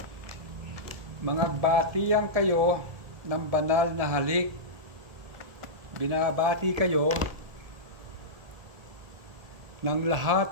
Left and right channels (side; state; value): left; late; 1.7 ms